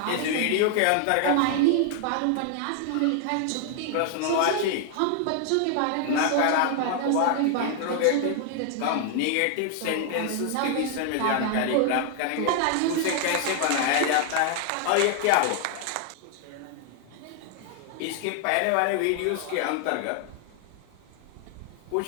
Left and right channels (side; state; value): both; different; correlation 0.00